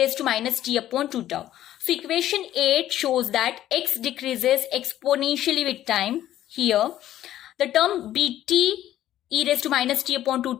to minus t upon 2 tau. So equation 8 shows that x decreases exponentially with time. Here, the term bt e raised to minus t upon 2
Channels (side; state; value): right; quieter; 12.7 dB